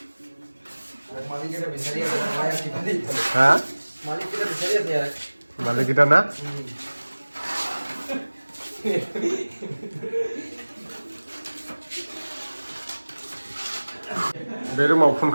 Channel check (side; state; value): both; inverted; correlation -1.00